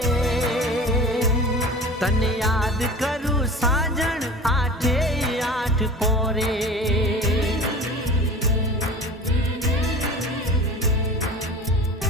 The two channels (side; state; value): both; normal; correlation 0.38